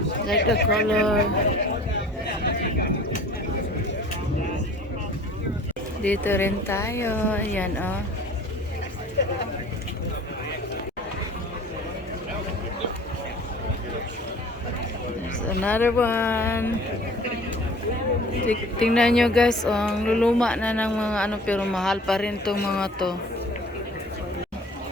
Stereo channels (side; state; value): both; normal; correlation 0.47